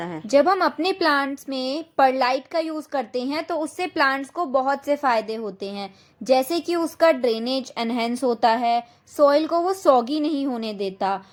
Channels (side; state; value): both; identical; correlation 1.00